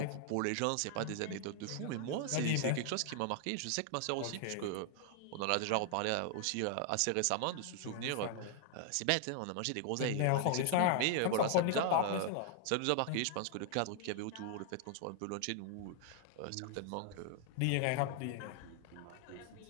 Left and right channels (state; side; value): different; both; correlation 0.00